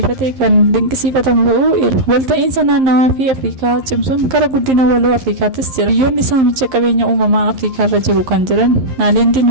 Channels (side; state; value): left; late; 11 ms